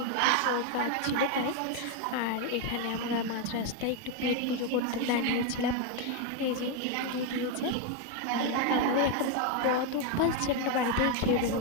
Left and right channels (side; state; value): both; different; correlation 0.01